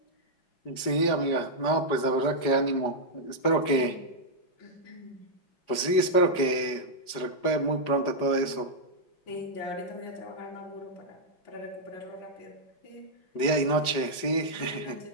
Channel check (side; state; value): right; late; 5.0 ms